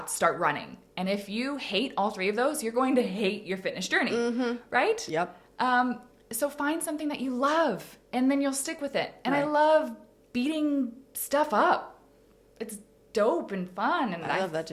start running. And if you hate all three of those, you're going to hate your fitness journey, right? Yep. So find something that you love, and then you'll stick with it. And Right. I love beating stuff up. It's dope and fun, and I love that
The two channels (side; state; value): both; identical; correlation 1.00